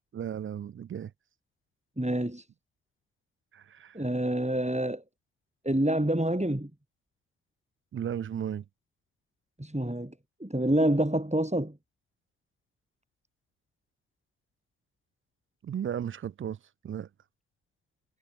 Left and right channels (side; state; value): both; normal; correlation 0.69